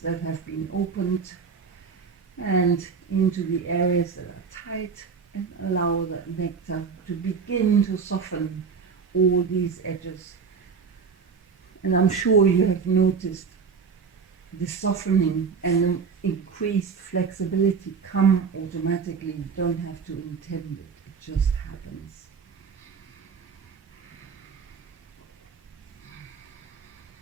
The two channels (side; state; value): left; quieter; 5.7 dB